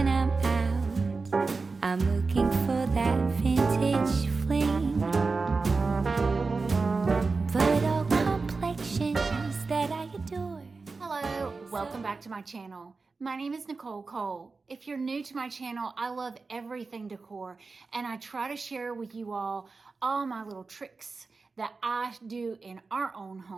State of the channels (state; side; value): quieter; left; 4.1 dB